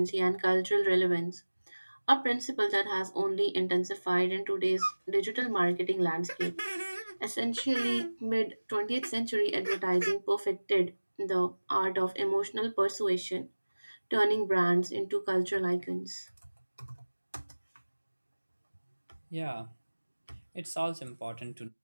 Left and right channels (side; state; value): both; inverted; correlation -1.00